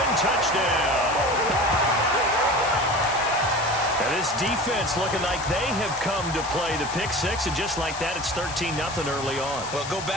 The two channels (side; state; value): left; noise; hiss, 10 dB below the sound